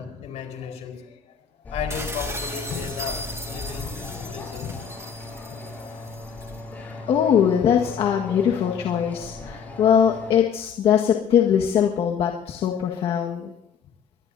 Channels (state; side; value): quieter; right; 7.7 dB